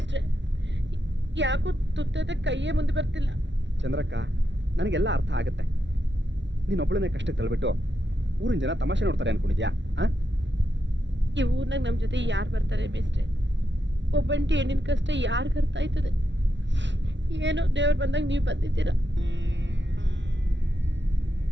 ಯಾಕೋ ತುತ್ತದ ಕೈಯೇ ಮುಂದೆ ಬರ್ತಿಲ್ಲ. ಚಂದ್ರಕ್ಕ, ನನಗೆಲ್ಲ ಅರ್ಥ ಆಗುತ್ತೆ. ನೀನೊಬ್ಬಳನ್ನೇ ಕಷ್ಟಕ್ಕೆ ತಳ್ಬಿಟ್ಟು ಊರಿನ ಜನ ತಮಾಷೆ ನೋಡ್ತಾರೆ ಅನ್ಕೊಂಡಿದ್ಯಾ? ಈ ಊರ್ನಾಗ ನಮ್ ಜೊತೆ ಯಾರು ಬರ್ತಾರೆ ಮೇಸ್ಟ್ರೆ? ಒಬ್ಬಂಟಿ ಹೆಣ್ಣಿನ ಕಷ್ಟ ಯಾರಿಗ ಅರ್ಥ ಆಯ್ತದೆ? ಏನೋ ದೇವ್ರು ಬಂದಾಗ ನೀವು ಬಂದಿದ್ದೀರಾ.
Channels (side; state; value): left; late; 0.52 ms